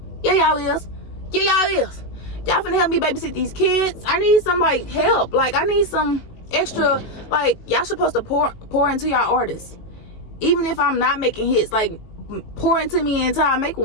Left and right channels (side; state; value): right; late; 18 ms